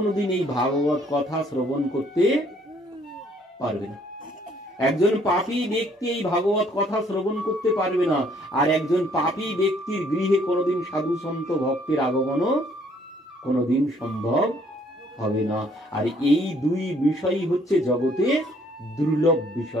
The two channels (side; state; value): both; normal; correlation 0.64